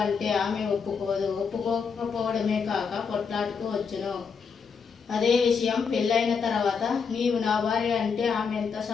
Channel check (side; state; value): right; quieter; 5.9 dB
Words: అంటే ఆమె ఒప్పుకోదు, ఒప్పుకోకపోవడమే కాక కొట్లాటుకు వచ్చును. అదే విషయం పెళ్ళైన తర్వాత నీవు నా భార్య అంటే ఆమె ఎంత